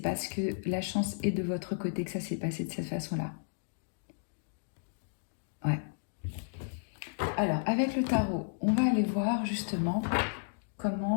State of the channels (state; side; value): silent; right; digital silence